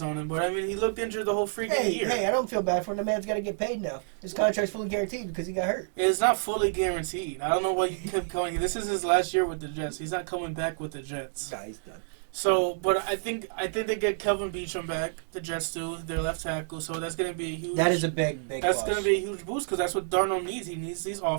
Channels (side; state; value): left; silent; digital silence